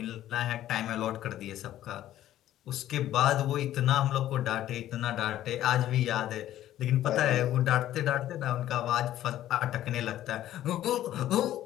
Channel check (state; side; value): quieter; right; 13.0 dB